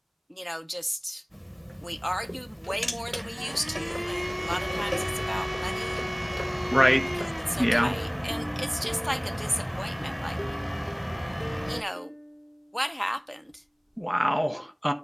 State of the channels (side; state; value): both; identical; correlation 1.00